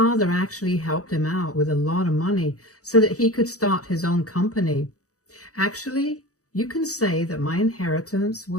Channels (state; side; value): late; right; 0.66 ms